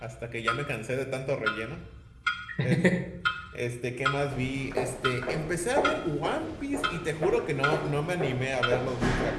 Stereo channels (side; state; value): both; identical; correlation 1.00